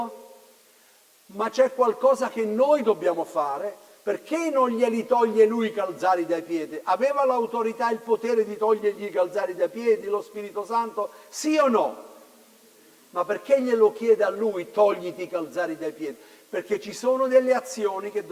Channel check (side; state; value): both; identical; correlation 1.00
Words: Ma c'è qualcosa che noi dobbiamo fare, perché non glieli toglie lui i calzari dai piedi? Aveva l'autorità e il potere di togliergli i calzari dai piedi, lo Spirito Santo? Sì o no? Ma perché glielo chiede a lui, togliti i calzari dai piedi? Perché ci sono delle azioni che